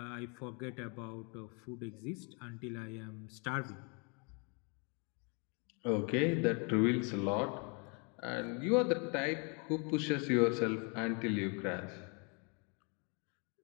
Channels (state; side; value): quieter; right; 34.2 dB